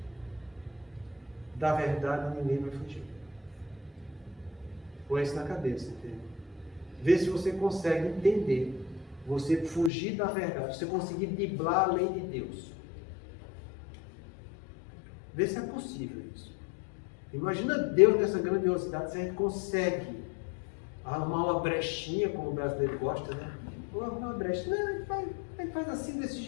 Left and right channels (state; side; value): drops out; right; at 9.9 s